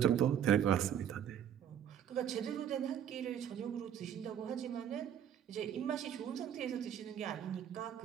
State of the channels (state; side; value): quieter; left; 9.5 dB